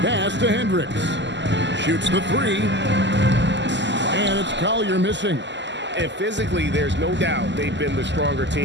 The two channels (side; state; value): left; late; 0.52 ms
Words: Pass to Hendricks. Shoots the three. And it's Collier missing. And physically, there's no doubt they've been the stronger